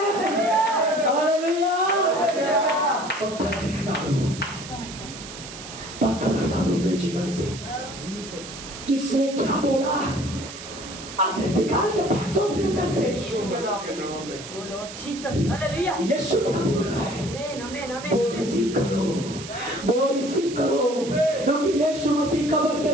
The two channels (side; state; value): right; noise; hiss, 12 dB below the sound